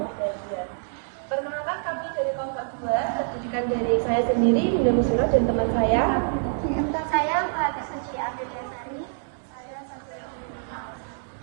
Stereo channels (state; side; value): silent; left; digital silence